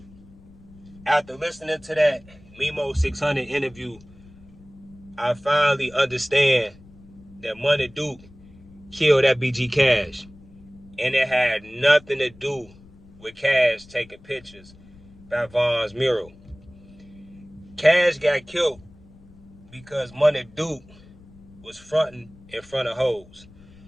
After listening to that Mimo 600 interview, I finally understand that Munna Duke killed FBG Cash. And it had nothing to do with Cash taking pictures by Von's mural. Cash got killed because Munna Duke was fronting in front of hoes.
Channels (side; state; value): left; noise; rumble, 23 dB below the sound